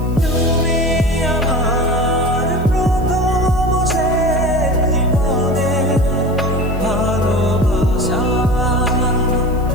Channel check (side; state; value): left; noise; hiss, 25 dB below the sound